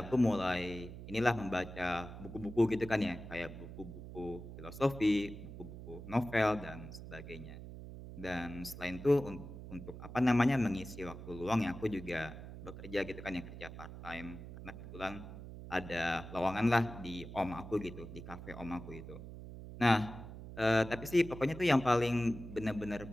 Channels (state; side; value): noise; right; hum, 12 dB below the sound